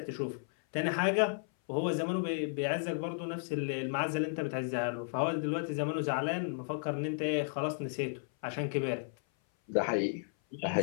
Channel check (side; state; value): right; silent; 55 dB below the other